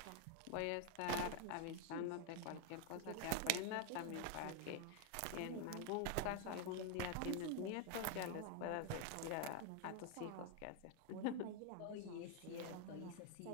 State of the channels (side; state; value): both; different; correlation 0.00